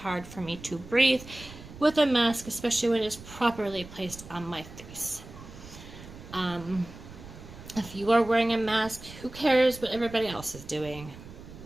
for me to breathe with a mask, especially when it is properly placed on my face. If you are wearing a mask, who cares what everybody else is doing?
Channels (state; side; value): noise; right; rumble, 16 dB below the sound